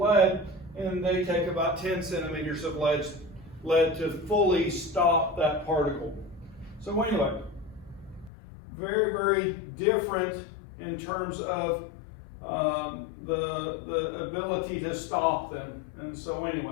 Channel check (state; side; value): drops out; right; at 8.3 s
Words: and they take about 10 centimeters of lead to fully stop that particle. So anyway, very, very different in terms of the ability to stop them. And so